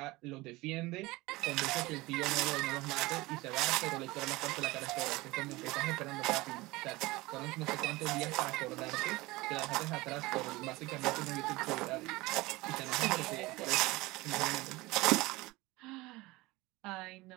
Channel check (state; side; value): quieter; left; 21.1 dB